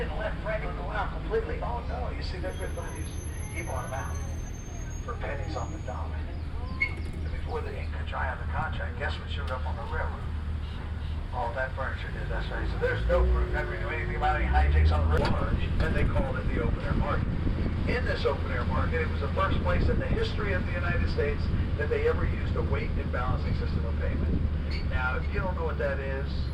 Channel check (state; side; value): identical; both; correlation 1.00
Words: let Franklin go out completely. Oh, no, you see, they're good buddies. He bought them out for pennies on the dollar. And before the ink could dry on the contract, guess what showed up on the railroad? All that furniture did, that's right. So there's no proof Henry knew anything about any hijinks on the railroad. And they called it the open-air market. In this open-air market, it was the first place in the history of the United States that they ever used a weight and balancing system of payment. Now, if you don't know what that is,